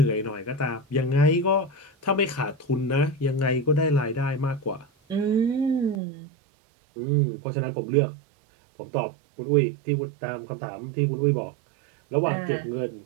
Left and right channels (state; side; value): drops out; left; at 6.0 s